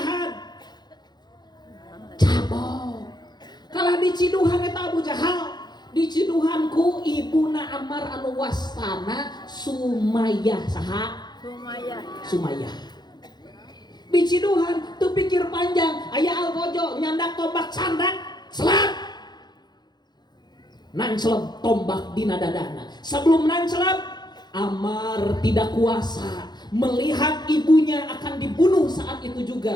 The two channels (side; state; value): right; late; 0.21 ms